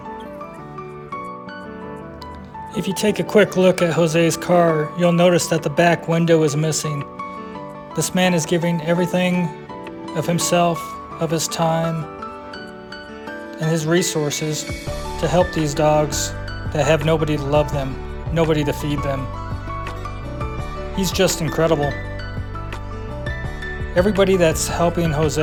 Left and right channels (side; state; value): both; identical; correlation 1.00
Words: If you take a quick look at Jose's car, you'll notice that the back window is missing. This man is giving everything of himself, of his time, and his resources to help these dogs that have nobody to love them, nobody to feed them. He's just incredible. Everybody that's helping